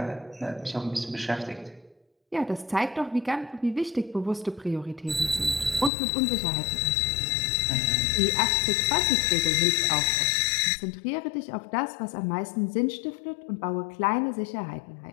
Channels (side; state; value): right; drops out; at 5.9 s